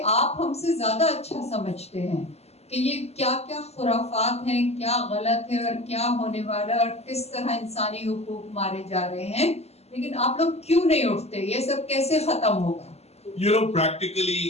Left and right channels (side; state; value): right; late; 0.30 ms